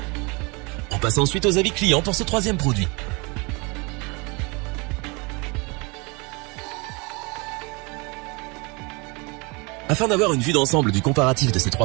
On passe ensuite aux avis clients pour ce troisième produit. Afin d'avoir une vue d'ensemble du comparatif de ces 3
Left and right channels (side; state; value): left; quieter; 28.6 dB